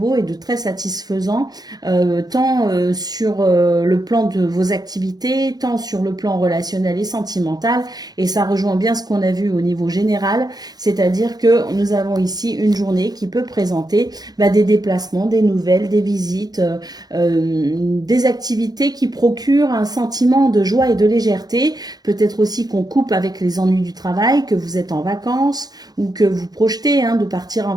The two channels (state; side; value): late; left; 0.19 ms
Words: et de très satisfaisant, tant sur le plan de vos activités, tant sur le plan relationnel et sentimentale, et ça rejoint bien ce qu'on a vu au niveau général, c'est-à-dire que nous avons ici une journée qui peut présenter des déplacements, des nouvelles, des visites, des activités qui procurent un sentiment de joie et de légèreté. Peut-être aussi qu'on coupe avec les ennuis du travail, que vous êtes en vacances ou que vous projetez de partir en